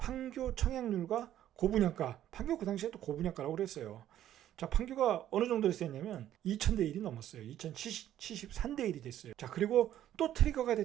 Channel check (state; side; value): quieter; left; 11.9 dB